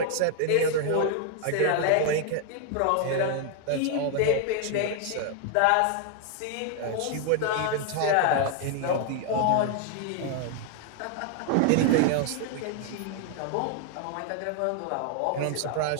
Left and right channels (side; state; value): both; different; correlation 0.00